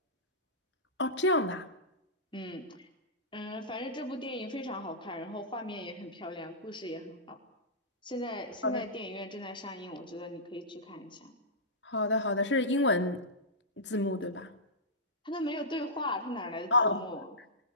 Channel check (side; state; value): both; normal; correlation -0.16